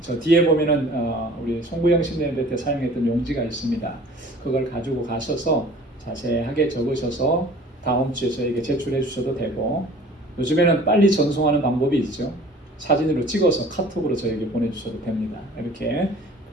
저 뒤에 보면은 우리 송구영 신대회 때 사용했던 용지가 있습니다. 그걸 가지고 가셔서 자세하게 적으셔서 다음 주에 저에게 제출해 주셔도 되고, 요즘에는 빨리 전송하는 방법이 있죠. 사진으로 찍어서 카톡으로 저에게 보내주셔도 됩니다. 이렇게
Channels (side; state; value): both; normal; correlation 0.47